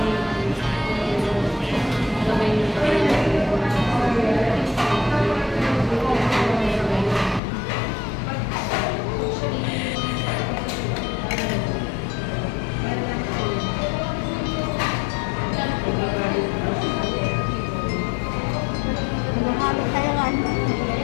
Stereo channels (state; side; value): drops out; right; at 7.4 s